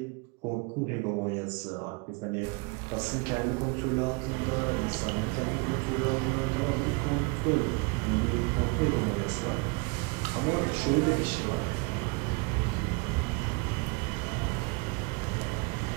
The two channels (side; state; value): left; quieter; 28.0 dB